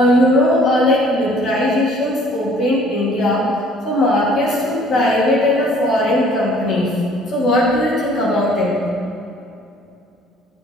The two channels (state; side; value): normal; both; correlation 0.56